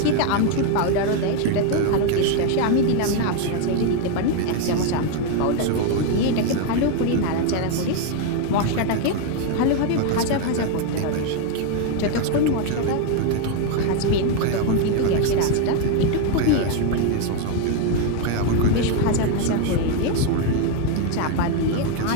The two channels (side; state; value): both; different; correlation 0.01